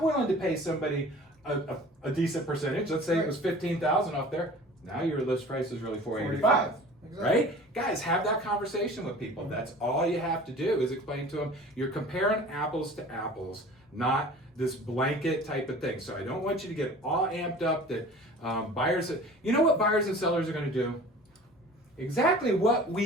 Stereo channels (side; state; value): both; normal; correlation 0.43